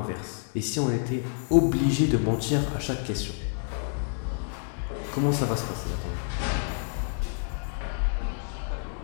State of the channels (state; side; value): silent; right; 59 dB below the other